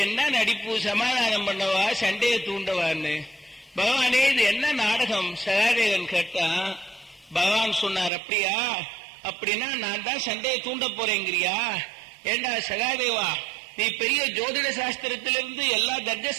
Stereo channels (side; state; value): left; drops out; at 8.1 s